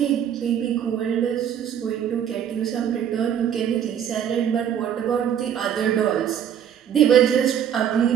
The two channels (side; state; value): left; quieter; 9.2 dB